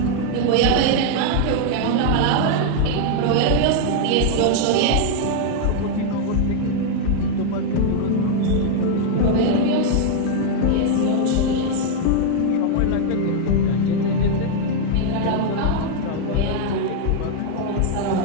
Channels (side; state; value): both; different; correlation 0.00